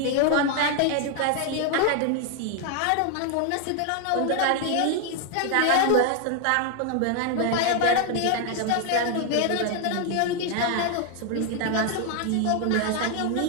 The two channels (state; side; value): different; both; correlation 0.00